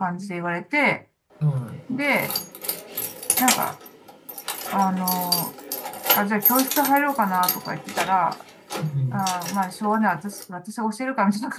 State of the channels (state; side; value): identical; both; correlation 1.00